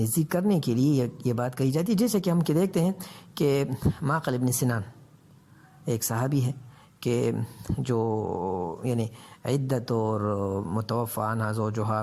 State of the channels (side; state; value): both; identical; correlation 1.00